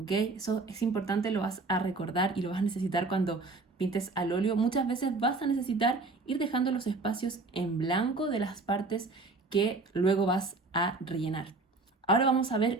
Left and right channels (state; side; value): quieter; left; 3.6 dB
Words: Eso es importante, lo vas a recordar y lo vas a necesitar cuando pintes al óleo. Muchas veces vas a necesitar ir dejando los espacios en blanco de las partes que luego vas a rellenar. Ahora vamos a